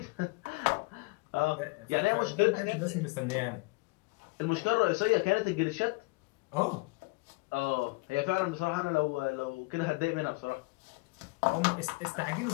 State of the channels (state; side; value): quieter; right; 25.7 dB